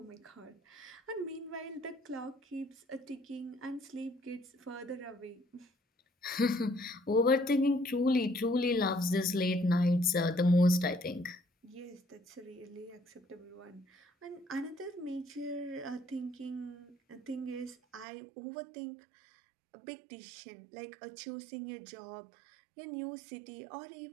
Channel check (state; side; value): drops out; left; at 18.1 s